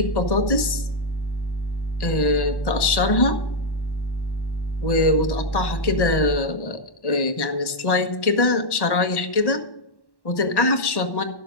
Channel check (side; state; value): right; late; 1.1 ms